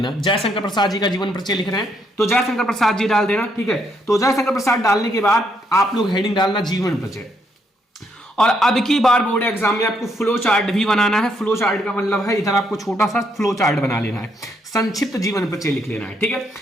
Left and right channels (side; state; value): both; normal; correlation 0.74